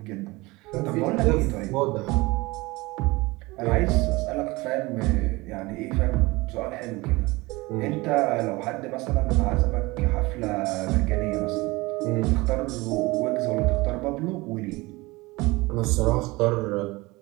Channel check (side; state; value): left; quieter; 22.4 dB